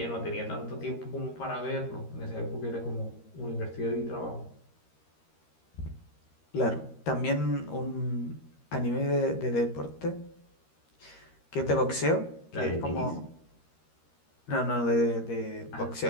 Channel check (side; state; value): right; late; 13 ms